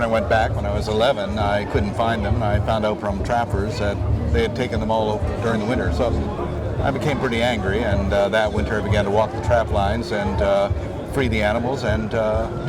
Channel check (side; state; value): both; identical; correlation 1.00